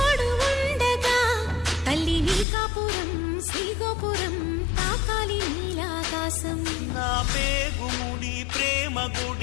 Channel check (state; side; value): drops out; right; at 2.5 s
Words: ఉండగా తల్లి నీ కాపురం శ్రీగోపురం తాకాలి నీలాకాశం. నా పేగుముడి ప్రేమ